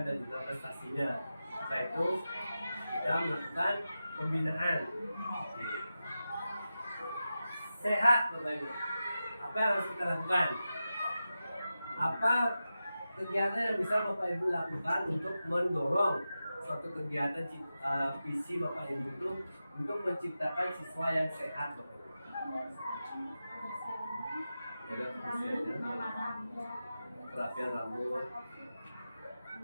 dan juga prestasinya. Setelah itu kita melakukan pembinaan. Sehat Bapak Ibu. Apa yang harus kita lakukan? Apa kegiatan yang bisa Bapak Ibu lakukan untuk mendorong suatu kegiatan visi Bapak Ibu itu untuk menciptakan siswa yang sehat Bapak Ibu? Ada kerapian rambut,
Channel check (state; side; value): inverted; both; correlation -0.92